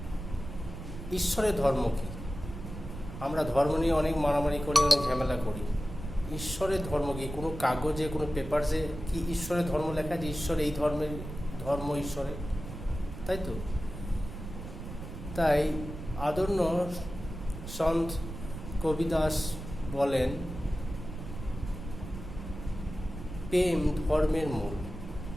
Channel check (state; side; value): noise; right; rumble, 10 dB below the sound